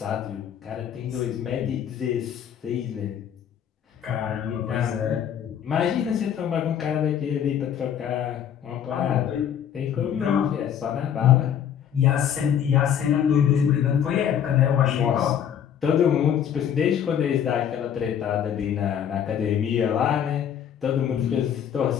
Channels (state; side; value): quieter; right; 9.1 dB